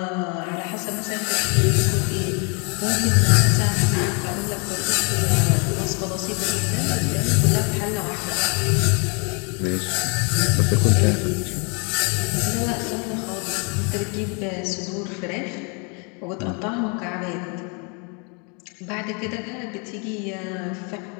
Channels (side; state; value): right; quieter; 35.0 dB